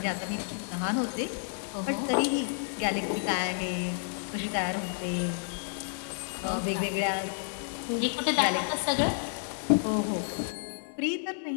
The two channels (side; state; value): right; silent; 58 dB below the other